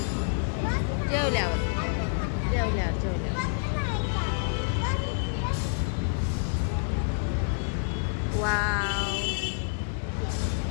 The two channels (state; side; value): silent; right; digital silence